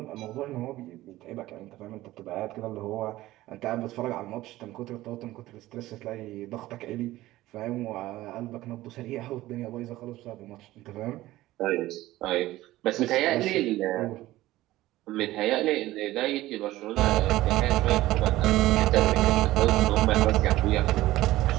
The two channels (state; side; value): quieter; left; 16.5 dB